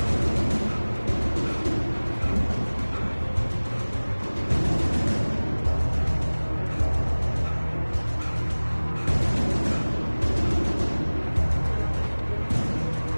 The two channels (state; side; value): inverted; both; correlation -1.00